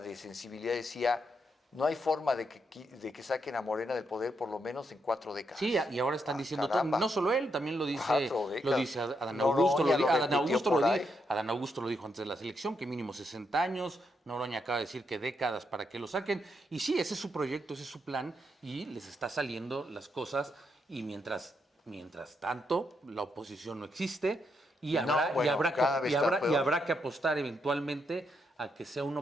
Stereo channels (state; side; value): normal; both; correlation 0.80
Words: sensibilidad decía: no hay forma de que saquen a Morena del poder por lo menos en 4 décadas. Sí, y ahora están diciendo, caramba. no solo él, también lo dice Adán Augusto. Adán Augusto lo dijo antes de la selección, que mínimo 60 años. Noroña acaba de decir que décadas para que lo saquen. Y sí, ese es su proyecto, ese es su plan, y les está saliendo las cosas. Y mientras tanto, la oposición no existe, y habrá que apostar eventualmente a que sea una